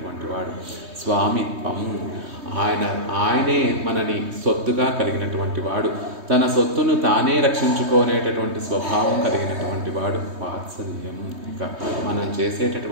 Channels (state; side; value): late; left; 3.2 ms